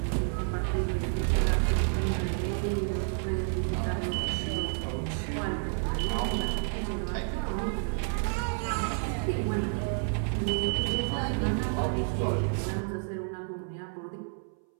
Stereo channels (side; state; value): left; silent; 58 dB below the other